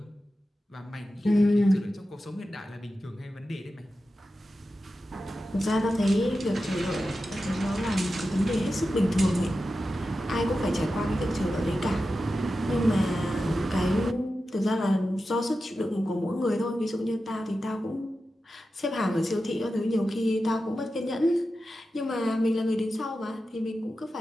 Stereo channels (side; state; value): both; normal; correlation 0.92